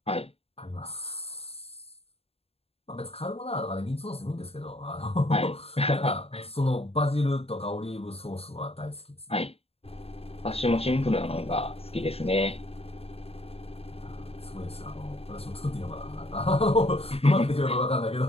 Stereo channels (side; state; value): right; late; 0.29 ms